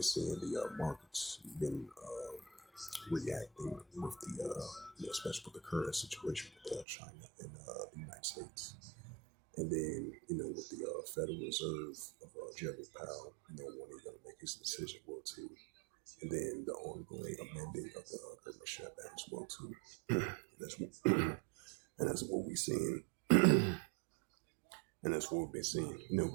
seeing the markets been reacting with especially with the current situation with China and the United States. And then, with the Federal Reserve of Jeremy Powell, when he's going to make his decision, well, too. And then the ongoing amending of the government shutdown as well, too. And that's what we're seeing. And that's what we've been seeing,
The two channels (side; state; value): left; drops out; at 6.9 s